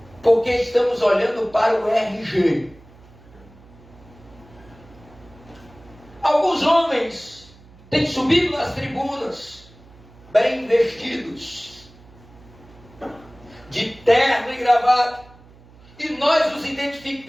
porque estamos olhando para o RG. Alguns homens têm subido nas tribunas, bem vestidos, de terno e gravata, e nós os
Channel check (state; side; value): noise; right; hum, 24 dB below the sound